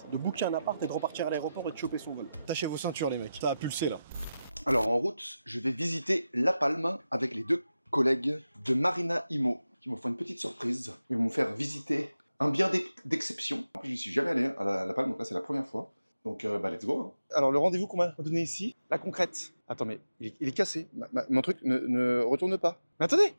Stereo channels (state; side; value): inverted; both; correlation -0.92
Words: de booker un appart et de repartir à l'aéroport et de choper son vol. Tâchez vos ceintures les mecs, ça a pulsé là. Alors en route, je vais visiter La Palme avec les deux collègues de Marina Imo qui m'ont fait une petite surprise. Ils vont me faire visiter un bien d'exception. Je n'y suis jamais allé à La Palme, donc là c'est la première fois. Donc let's go. Hein. Alors le rendez-vous qu'on m'a donné ici, la concrète. Attends mais il est cassé, mon truc ne retourne pas. Mais attendez,